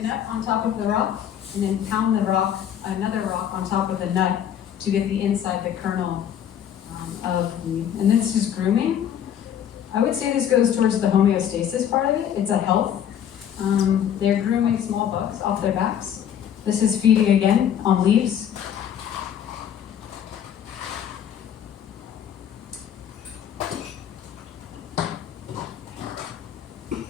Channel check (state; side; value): quieter; right; 9.5 dB